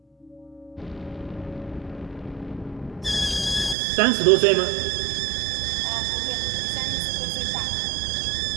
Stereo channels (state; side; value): drops out; left; at 3.8 s